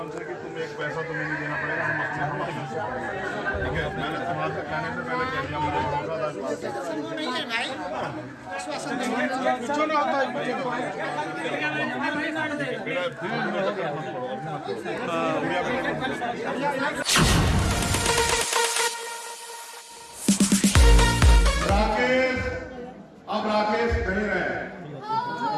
कि तुम एक पैसा तुम्हें नहीं देना पड़ेगा, हम अपने से पड़ेगा। ठीक है, मैंने तुम्हारे कहने से पहले कह दिया। मुझे राकेश अब राकेश नहीं रहे,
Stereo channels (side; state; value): both; identical; correlation 1.00